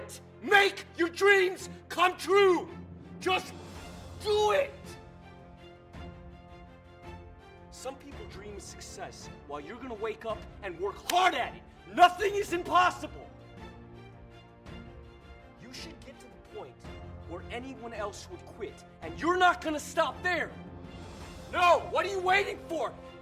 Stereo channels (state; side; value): identical; both; correlation 1.00